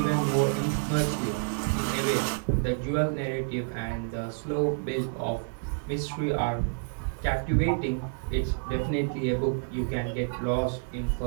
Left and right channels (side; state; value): left; silent; digital silence